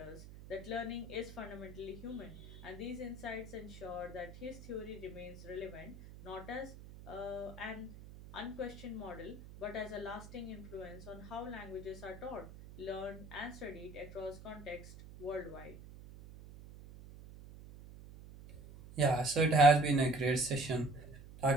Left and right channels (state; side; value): noise; right; hum, 15 dB below the sound